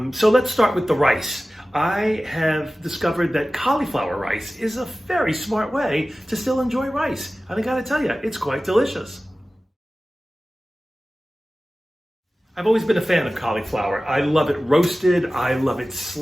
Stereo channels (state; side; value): normal; both; correlation 0.96